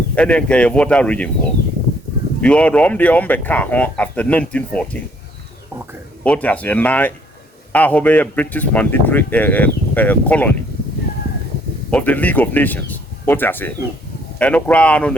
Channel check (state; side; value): normal; both; correlation 0.64